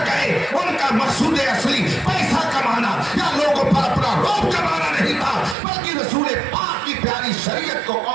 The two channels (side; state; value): left; drops out; at 5.6 s